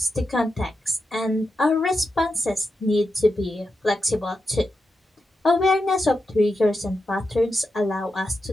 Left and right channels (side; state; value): both; normal; correlation 0.87